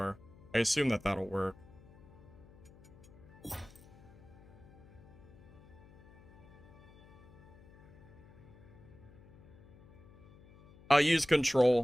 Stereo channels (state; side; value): noise; left; hum, 23 dB below the sound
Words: I assume that that'll work. I'll use